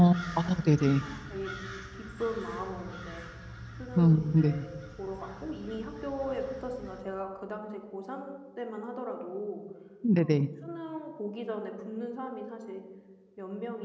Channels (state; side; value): identical; both; correlation 1.00